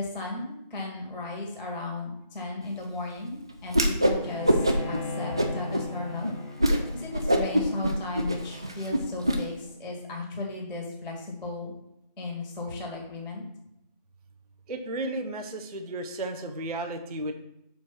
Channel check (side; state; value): both; inverted; correlation -0.72